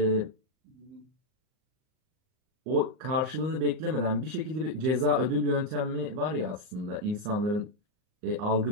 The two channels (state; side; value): late; left; 39 ms